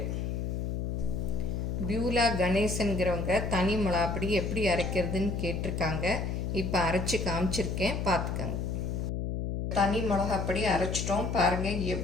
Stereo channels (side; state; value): left; noise; hum, 2 dB below the sound